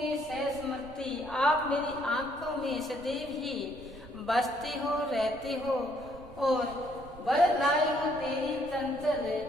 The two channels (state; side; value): noise; right; rumble, 18 dB below the sound